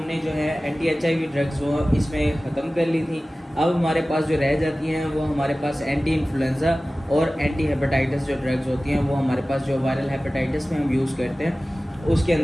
जो है एंटी HIV ड्रग्स वो इसमें ख़त्म कर ली थी। अब हमारे पास जो रह जाती हैं वो हमारे पास एंटी इन्फ्लुएंज़ा और एंटी हेपेटाइटिस जो ड्रग्स होती हैं वो हमारे पास जो वायरल हेपेटाइटिस में हम यूज़ करते हैं उसके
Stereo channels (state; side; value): normal; both; correlation 0.97